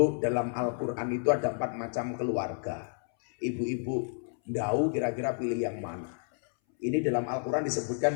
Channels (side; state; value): right; silent; 58 dB below the other